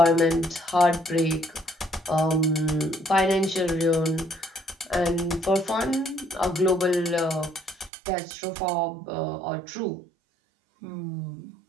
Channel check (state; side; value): drops out; left; at 7.9 s